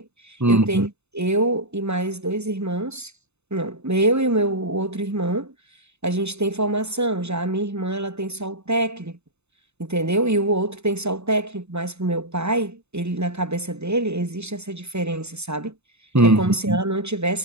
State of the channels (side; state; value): left; late; 0.81 ms